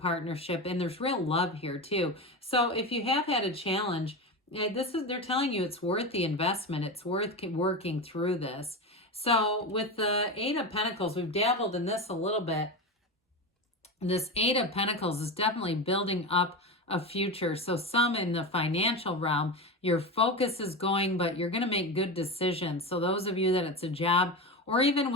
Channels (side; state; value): both; normal; correlation 0.21